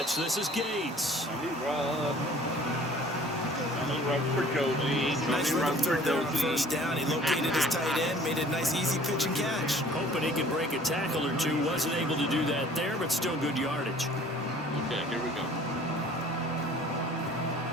This is Gates. Nice run through there on 1st down. He located his tight end, made a nice easy pitch and catch. Hoping he can break a tackle or two. Wasn't able to do that there, but still good yardage. Okay, here we go.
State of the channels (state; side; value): normal; both; correlation 0.51